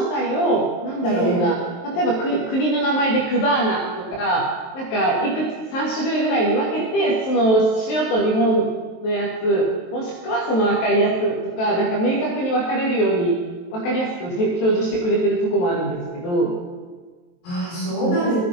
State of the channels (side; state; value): right; late; 23 ms